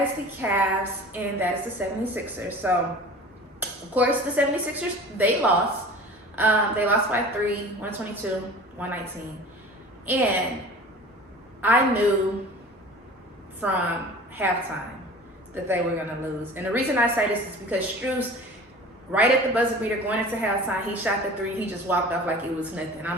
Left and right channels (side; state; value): both; normal; correlation 0.41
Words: is the Cavs, and that is the 76ers. So, of course, the 76ers, they lost. They lost by 3, 122, 119. And I knew from halftime that they were going to lose. And the reason I say this is because Strus, right at the buzzer beater going into halftime, he shot the 3. He just walked off like it was nothing. I'm